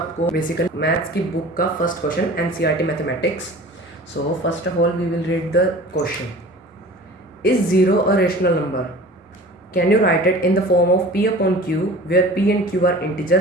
बेसिकली मैथ्स की बुक का first question NCERT mathematics. First of all we will read the question. Is zero a rational number? Can you write it in the form of p upon q where p and q are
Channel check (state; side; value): normal; both; correlation 0.41